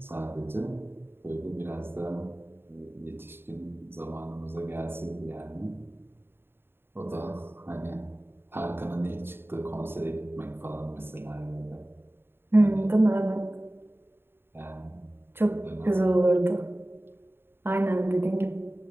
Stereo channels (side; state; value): left; late; 0.11 ms